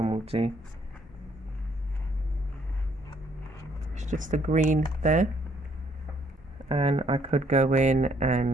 will do. It's just a green there, and I could go in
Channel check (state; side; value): normal; both; correlation 0.67